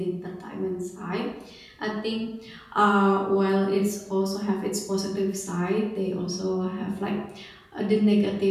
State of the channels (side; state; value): both; identical; correlation 1.00